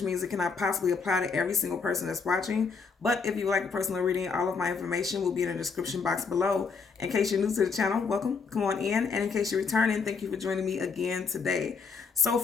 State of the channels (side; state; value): right; quieter; 5.2 dB